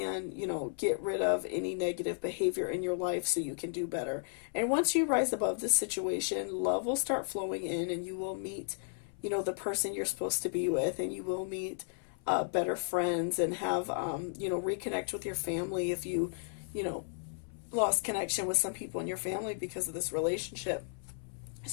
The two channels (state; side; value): silent; right; 55 dB below the other